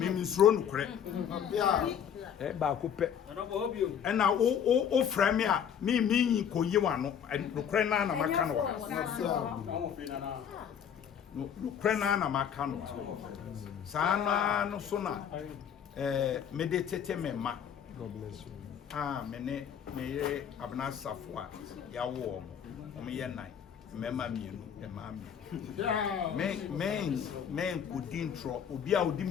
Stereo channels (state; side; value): quieter; right; 8.4 dB